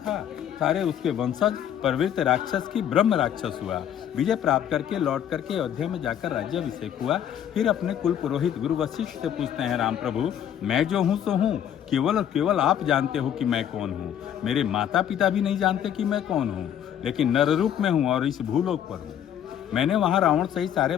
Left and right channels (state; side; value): quieter; right; 9.9 dB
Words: सारे उसके वंशज प्रवृत्त राक्षस की ब्रह्म राक्षस हुआ। विजय प्राप्त करके लौट करके अयोध्या में जाकर राज्याभिषेक हुआ। फिर अपने कुल पुरोहित गुरु वशिष्ठ से पूछते हैं, राम प्रभु मैं जो हूँ सो हूँ, केवल और केवल आप जानते हो कि मैं कौन हूँ। मेरे माता पिता भी नहीं जानते कि मैं कौन हूँ, लेकिन नर रूप में हूँ और इस भूलोक पर हूँ। मैंने वहां रावण सहित सारे